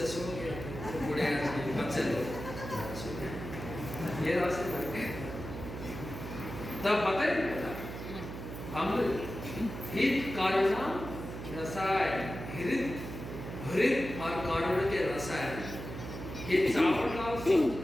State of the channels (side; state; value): right; noise; hum, 8 dB below the sound